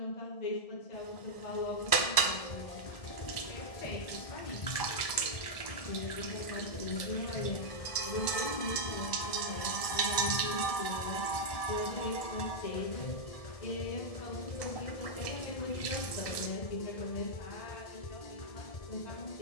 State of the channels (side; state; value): right; late; 1.7 ms